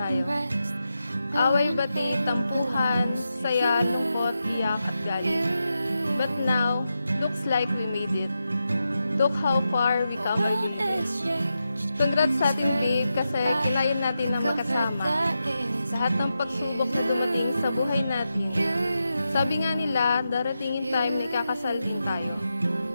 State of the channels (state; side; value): inverted; both; correlation -0.89